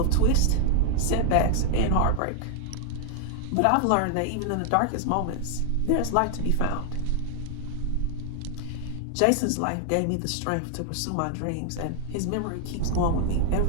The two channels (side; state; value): both; different; correlation 0.00